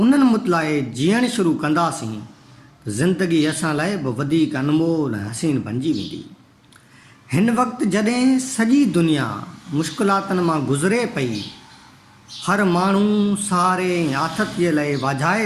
मुतलाए जीअणु शुरू कंदासीं, ज़िंदगी असां लाइ बि वधीक अनमोल ऐं हसीन बणिजी वेंदी। हिन वक़्तु जॾहिं सॼी दुनिया मुश्किलातुनि मां गुज़रे पई, हर माण्हू सहारे ऐं आथतीअ लाइ वाझाए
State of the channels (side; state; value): both; identical; correlation 1.00